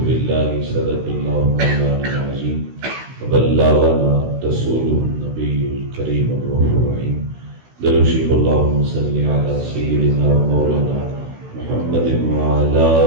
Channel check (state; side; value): late; left; 16 ms